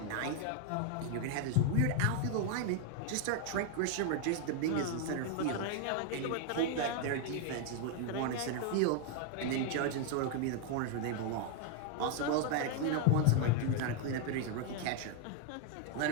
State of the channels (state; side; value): different; both; correlation 0.00